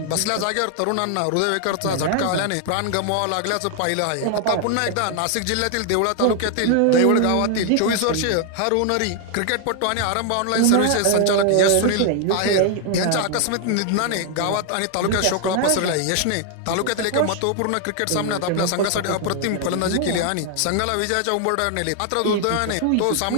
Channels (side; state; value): both; different; correlation 0.00